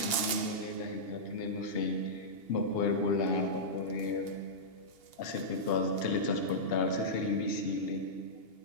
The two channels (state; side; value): late; right; 2.8 ms